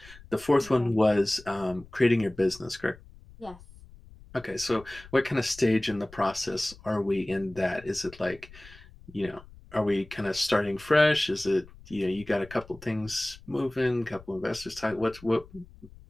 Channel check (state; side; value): noise; left; rumble, 21 dB below the sound